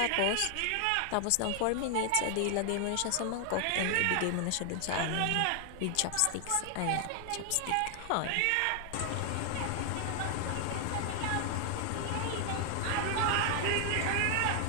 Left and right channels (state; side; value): different; both; correlation 0.00